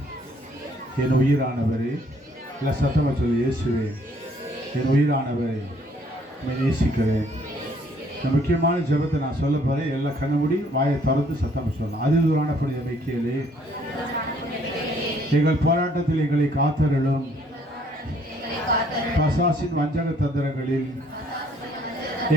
என் உயிரானவரே. இல்லை சத்தமாக சொல்ல, இயேசுவே என் உயிரானவரே, நேசிக்கிறேன். இந்த முக்கியமான ஜெபத்தை நான் சொல்ல போகிறேன். எல்லாம் கண்ண மூடி வாயை திறந்து சத்தமாக சொல்லலாம். அதிதூரான புனித மைக்கேலே, எங்கள் போராட்டத்தில் எங்களை காத்தருளும். பசாசின் வஞ்சக தந்திரங்களில்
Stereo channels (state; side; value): normal; both; correlation 0.63